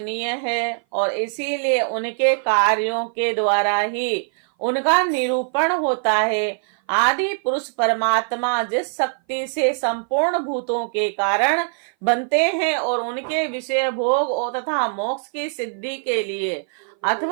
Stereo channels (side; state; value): left; silent; 58 dB below the other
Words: है और इसीलिए उनके कार्यों के द्वारा ही उनका निरूपण होता है। आदि पुरुष परमात्मा जिस शक्ति से संपूर्ण भूतों के कारण बनते हैं और उनके विषय भोग और तथा मोक्ष की सिद्धि के लिए